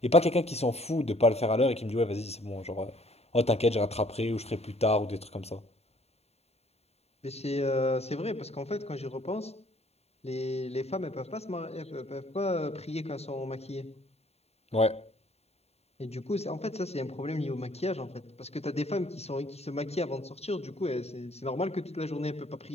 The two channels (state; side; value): late; right; 0.30 ms